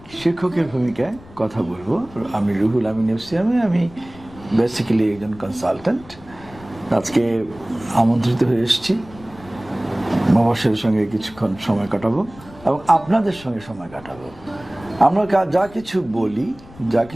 শিক্ষকের ভূমিকায় কথা বলবো। আমি রুহুল আমিন এফসিয়ামে, আমি বেসিক্যালি একজন কনসালট্যান্ট। আজকে আমন্ত্রিত হয়ে এসেছি, মবাশিরের সঙ্গে কিছুক্ষণ সময় কাটাবো এবং আপনাদের সঙ্গে সময় কাটাবো। আমরা যা কিছু বলি, যা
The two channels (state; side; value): noise; left; rumble, 21 dB below the sound